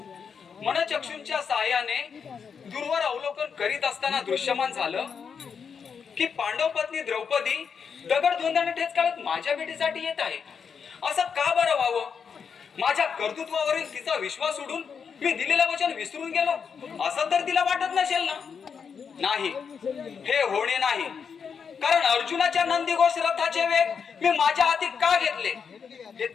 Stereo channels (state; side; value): quieter; right; 6.4 dB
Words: मनचक्षूंच्या साहाय्याने दूरवर अवलोकन करीत असताना दृश्यमान झालं की पांडव पत्नी द्रौपदी दगड धोंडाने ठेच काढत माझ्या भेटीसाठी येत आहे. असं का बरं व्हावं? माझ्या कर्तृत्वावरील तिचा विश्वास सोडून मी दिलेलं वचन विसरून गेलो असं तर तिला वाटत नसेल ना? नाही, हे होणे नाही. कारण अर्जुनाच्या नंदीघोष रथाचे वेग मी माझ्या हाती का घेतले हे